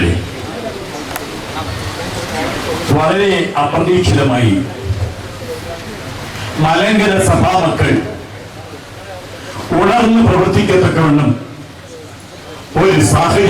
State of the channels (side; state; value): both; identical; correlation 1.00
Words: വളരെ അപ്രതീക്ഷിതമായി മലങ്കര സഭാമക്കൾ ഉണർന്ന് പ്രവർത്തിക്കത്തക്കവണ്ണം ഒരു